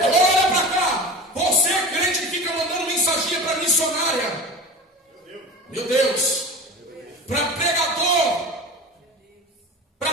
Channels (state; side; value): normal; both; correlation 0.32